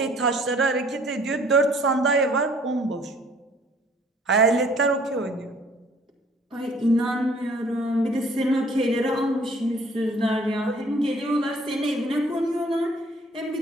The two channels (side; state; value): both; normal; correlation 0.57